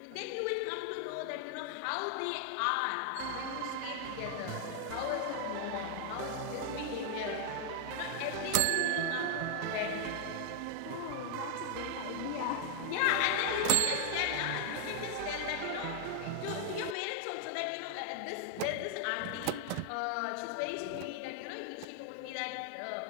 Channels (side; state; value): both; different; correlation 0.00